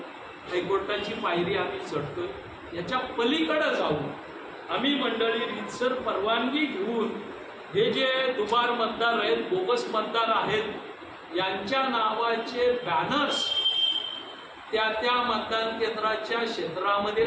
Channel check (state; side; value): identical; both; correlation 1.00